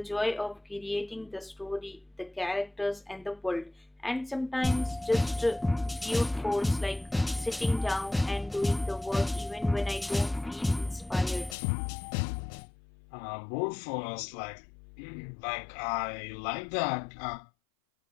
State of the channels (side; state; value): right; drops out; at 11.6 s